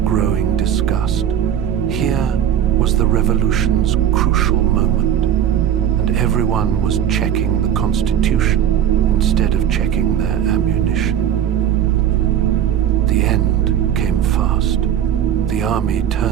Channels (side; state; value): left; quieter; 9.9 dB